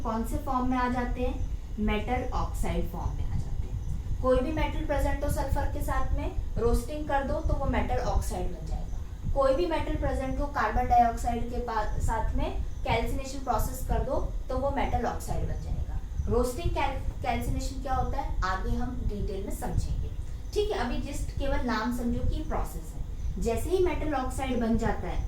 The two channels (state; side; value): identical; both; correlation 1.00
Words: कौन से फॉर्म में आ जाते हैं, मेटल ऑक्साइड फॉर्म में आ जाते हैं। कोई भी मेटल प्रेजेंट हो सल्फर के साथ में, रोस्टिंग कर दो तो वो मेटल ऑक्साइड बन जाएगा। कोई भी मेटल प्रेजेंट हो कार्बन डाइऑक्साइड के साथ में, कैल्सिनेशन प्रोसेस कर दो तो वो मेटल ऑक्साइड बन जाएगा। रोस्टिंग कैल्सिनेशन क्या होता है, आगे हम डिटेल में समझेंगे। ठीक है, अभी जस्ट केवल नाम समझो कि प्रोसेस है। जैसे ही मेटल ऑक्साइड बन जाता